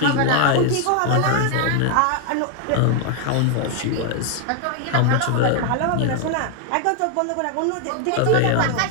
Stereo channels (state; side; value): different; both; correlation 0.00